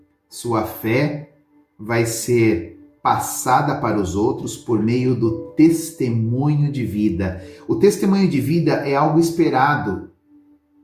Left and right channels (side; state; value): both; identical; correlation 1.00